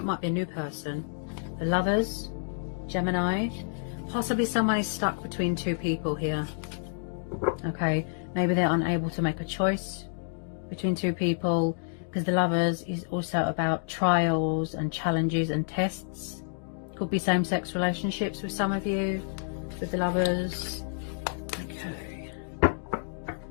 it might be a new person. The Lovers, Gemini. Possibly someone is stuck between two people here. Okay, maybe they're unable to make a choice between two people, because the Lovers is also about trials and challenges and tests. Could be same-sex relationships with some of you, with the Lovers. Okay.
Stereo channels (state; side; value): silent; right; digital silence